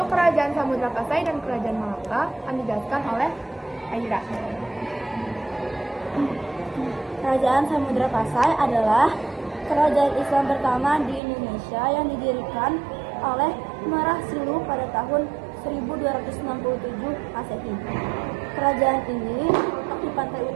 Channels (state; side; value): drops out; left; at 11.2 s